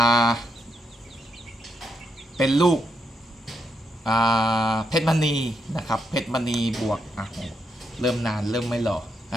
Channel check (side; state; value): both; normal; correlation 0.80